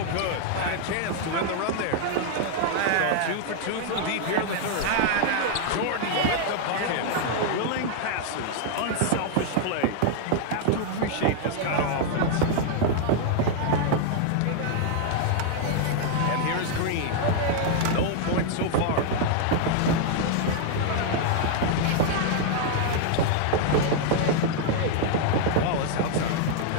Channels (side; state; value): both; different; correlation 0.00